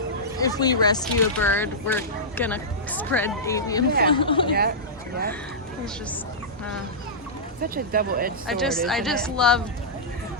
if we rescue a bird, we're gonna spread avian flu. Yeah. It's just, Such a double-edged sword. I just love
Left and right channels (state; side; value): normal; both; correlation -0.13